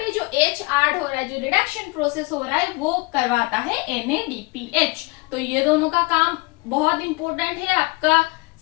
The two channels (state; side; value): quieter; right; 25.7 dB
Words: जो H ऐड हो रहा है, जो रिडक्शन प्रोसेस हो रहा है, वो करवाता है NADPH। तो ये दोनों का काम बहुत इंपॉर्टेंट है आपका